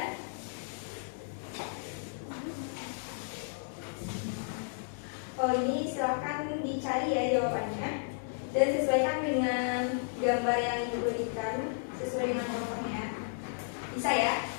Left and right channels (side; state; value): right; silent; digital silence